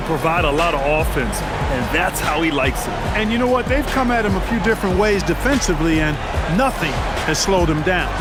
provide a lot of offense, and that's how he likes it. And you know what? They've come at him a few different ways defensively, and nothing has slowed him down.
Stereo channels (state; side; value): identical; both; correlation 1.00